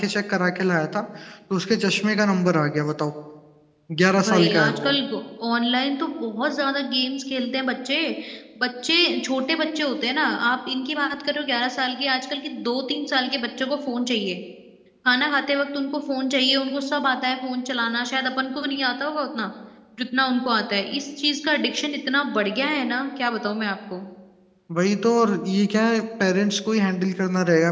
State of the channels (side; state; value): both; identical; correlation 1.00